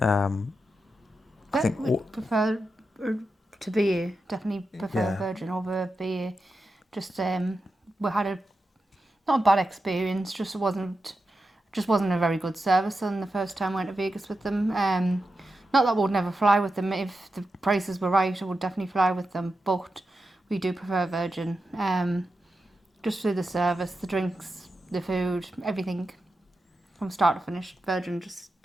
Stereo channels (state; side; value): normal; both; correlation 0.90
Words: think would prefer to BA, definitely prefer Virgin over BA. Just we had not a bad experience, just wasn't a very good service on the first time I went to Vegas with them. Not that we would never fly with them. If the prices were right, I would definitely fly with them, but we do prefer Virgin. Just through the service, the drinks, the food, everything from start to finish, Virgin just